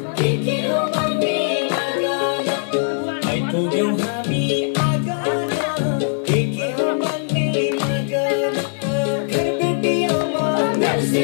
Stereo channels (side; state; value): right; silent; digital silence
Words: के हो भन्ने मागन आइपुग्यौं हामी आँगन के हो भन्ने मागन घरबेटी आमा